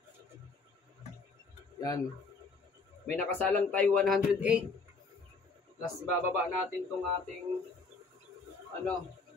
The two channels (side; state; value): right; quieter; 4.2 dB